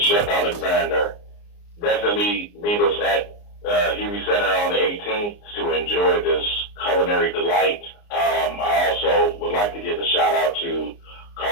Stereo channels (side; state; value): right; late; 29 ms